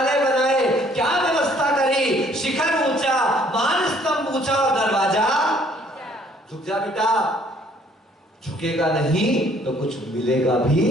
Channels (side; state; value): both; normal; correlation 0.61